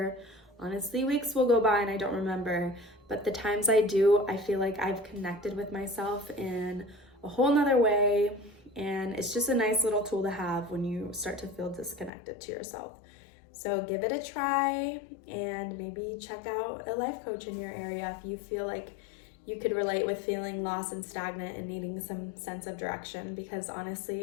Honestly, weeks will go by and I don't remember, but the times I do, I feel like I've connected with myself in a whole nother way, and it's just a nice little tool to have when you start to feel disconnected to yourself. So give it a try, and maybe check out a life coach in your area if you feel like you could relate with feeling lost and stagnant and needing some sense of direction, because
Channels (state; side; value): drops out; right; at 12.1 s